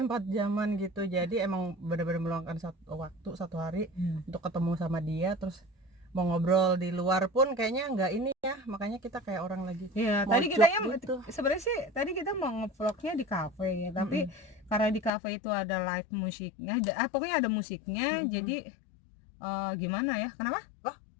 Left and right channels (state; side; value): drops out; right; at 15.1 s